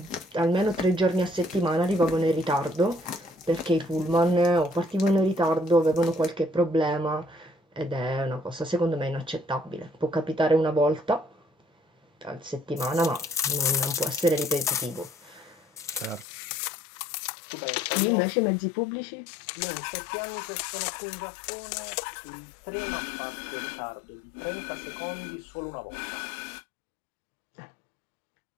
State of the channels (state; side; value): drops out; right; at 16.2 s